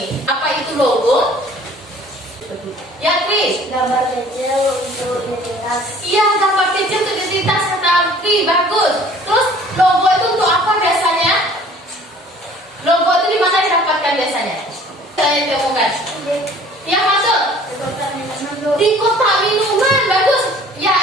Apa itu logo? Ya, Kris. Gambar kecil untuk identitas. Iya, gambar kecil untuk identitas kata Kris, bagus. Terus logo itu untuk apa biasanya? Logo itu di mana didapatkan biasanya? Saya temukan. Ya, masuk. Di kotak minuman, bagus. Ya,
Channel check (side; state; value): both; normal; correlation 0.52